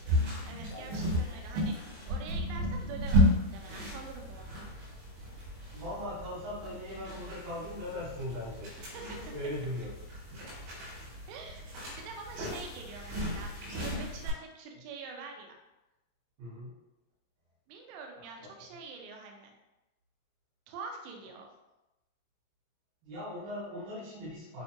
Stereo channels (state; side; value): late; left; 25 ms